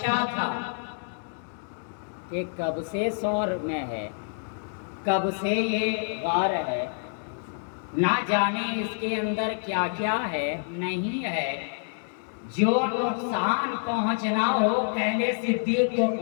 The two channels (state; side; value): silent; right; digital silence